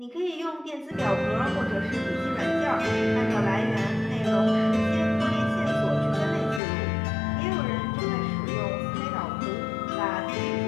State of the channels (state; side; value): drops out; right; at 6.6 s